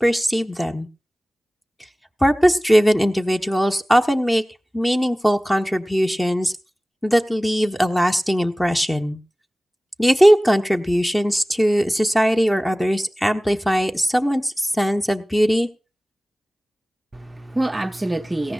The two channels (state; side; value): normal; both; correlation 0.98